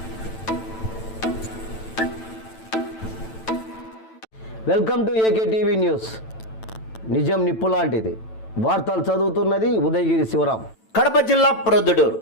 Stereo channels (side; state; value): right; late; 9.0 ms